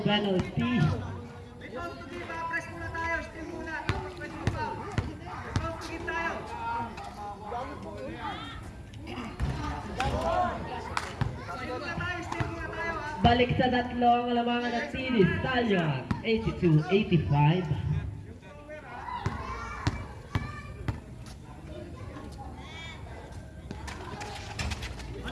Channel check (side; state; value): both; identical; correlation 1.00